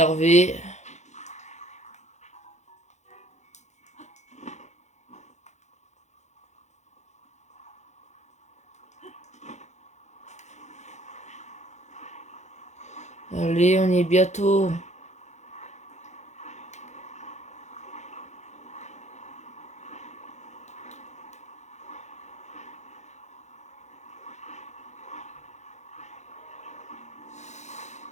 Allez, on y est bientôt.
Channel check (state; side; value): late; right; 0.33 ms